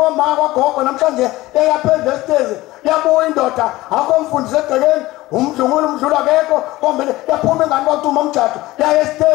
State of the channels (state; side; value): quieter; right; 18.3 dB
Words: kwagogo namhlanje eyaphezulu esitezi yabuya indoda akomfundisi egcekeni umdlungulu umdlula akekho kombele yaphuma ingane kwacuma umjado yaya